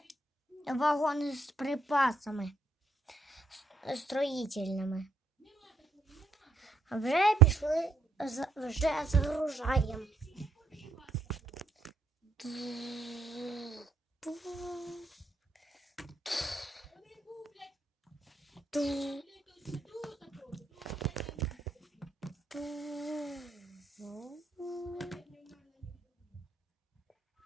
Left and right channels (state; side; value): quieter; left; 3.1 dB